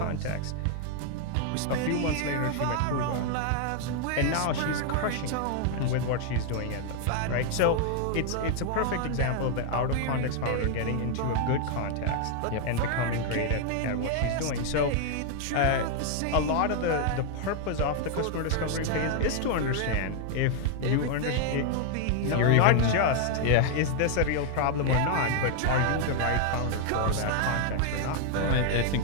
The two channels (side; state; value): both; different; correlation 0.00